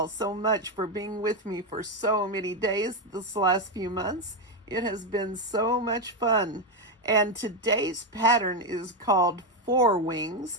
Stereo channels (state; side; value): normal; both; correlation 0.08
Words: so much for being with me for so many days this last few months. It has been so much fun. And today's pattern is called ForWings.